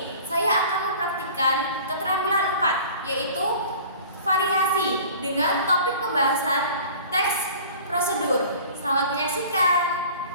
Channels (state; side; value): inverted; both; correlation -0.44